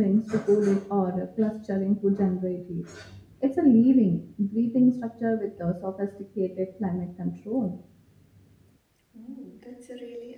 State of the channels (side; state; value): both; identical; correlation 1.00